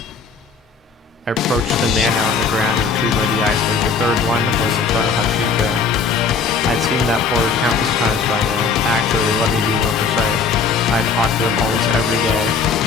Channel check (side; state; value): right; quieter; 5.2 dB